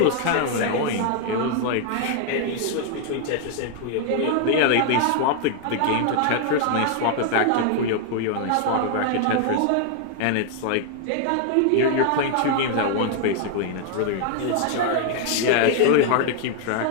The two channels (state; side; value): different; both; correlation 0.00